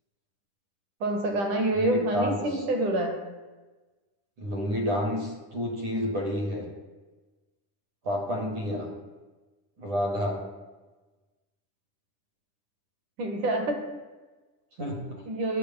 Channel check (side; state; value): left; late; 10 ms